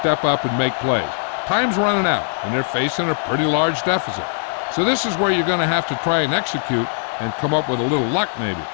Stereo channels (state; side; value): silent; right; digital silence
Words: up and make plays. Time's running out, and they're facing a pretty large deficit. So this is where you're going to have to try and execute and come up with a little luck maybe.